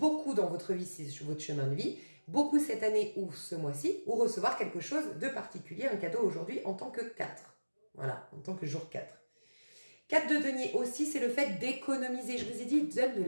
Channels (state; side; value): inverted; both; correlation -1.00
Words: dans votre vie, c'est votre chemin de vie, beaucoup cette année ou ce mois-ci, ou recevoir quelque chose de particulier, un cadeau aujourd'hui en tant que 4. Voilà, en tant que jour 4. 4 de denier aussi, c'est le fait d'économiser. Je vous ai dit, il donne de